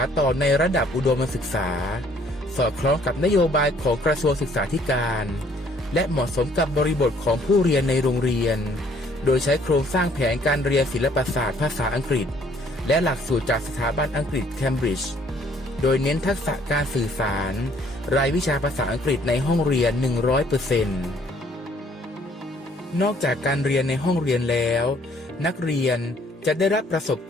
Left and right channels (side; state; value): both; normal; correlation 0.61